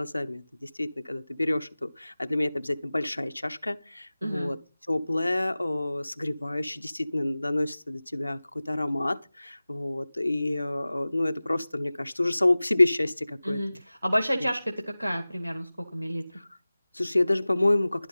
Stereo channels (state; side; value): inverted; both; correlation -0.98